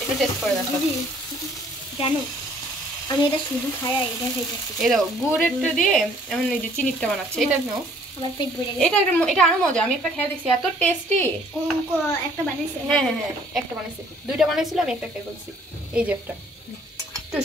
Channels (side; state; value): both; normal; correlation 0.59